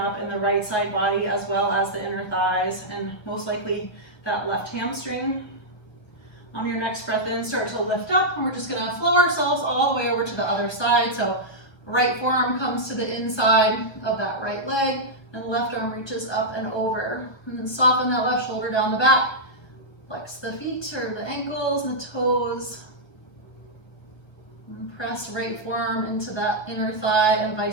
in the right side body as well as the inner thighs, and most likely that left hamstring. On your next breath in, start to lift up, and we're just gonna flow ourselves all the way over to the other side. So right forearm comes to the inside of that right leg, and left arm reaches up and over. And then soften that left shoulder down the back. Flex the feet or the ankles and the toes. And press right forearm into that inner thigh and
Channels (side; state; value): right; late; 1.5 ms